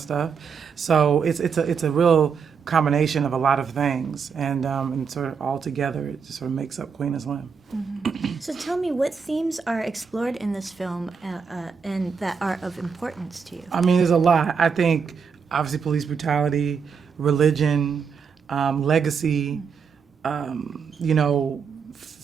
stuff. So it's a real combination of a lot of things, and sort of all together, it just sort of makes up Queen and Slim. So tell me, what themes are explored in this film and that are of importance to you? I mean, there's a lot. I think, obviously, police brutality, religion, legacy,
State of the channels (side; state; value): left; quieter; 6.1 dB